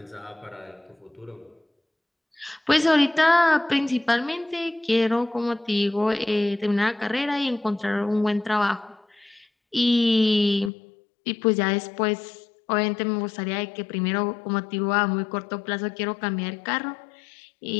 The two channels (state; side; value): drops out; right; at 10.7 s